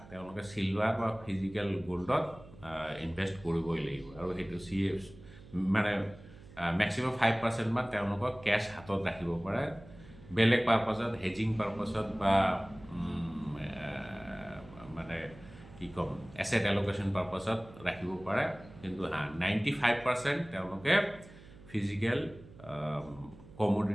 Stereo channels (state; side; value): noise; right; hum, 20 dB below the sound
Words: তেওঁলোকে চিলভাৰ বা ফিজিকেল গ'ল্ডত ইনভেষ্ট কৰিবই লাগিব। আৰু সেইটো মানে মেক্সিমাম 5% মান তেওঁলোকক কেছ হাতত ৰাখিব পাৰে, বেলেগ পাৰপাছত, হেজিং পাৰপাছত বা মানে কি ক'ম, এছেট এল'কেশ্যন পাৰপাছত ৰাখিব পাৰে। কিন্তু 95% তেওঁলোকে ফিজিকেল